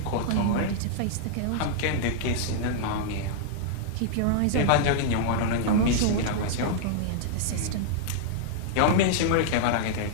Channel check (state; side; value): different; both; correlation -0.01